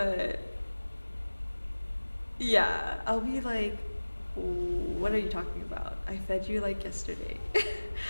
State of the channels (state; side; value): inverted; both; correlation -1.00